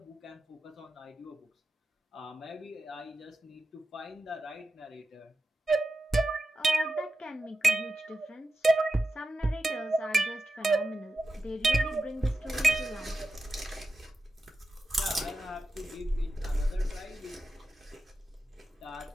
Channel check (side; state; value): both; normal; correlation 0.91